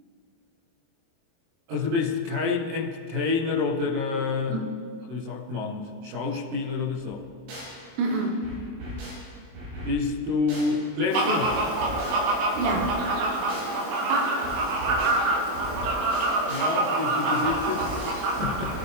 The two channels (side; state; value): left; late; 24 ms